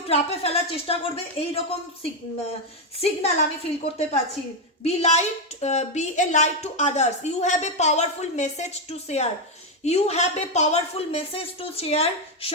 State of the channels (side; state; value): both; normal; correlation 0.04